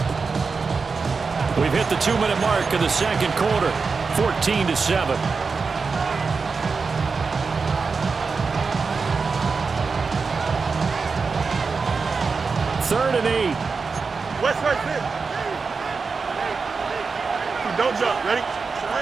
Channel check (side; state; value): left; quieter; 4.8 dB